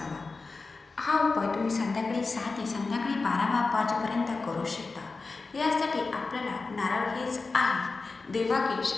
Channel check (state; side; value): quieter; right; 4.0 dB